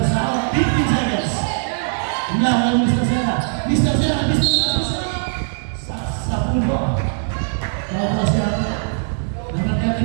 South. 15 seconds. Lawan Mr. Sierra. Mr. Sierra. Mr. Sierra. Sa pulo. Tapos siya. Number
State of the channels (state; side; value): silent; left; digital silence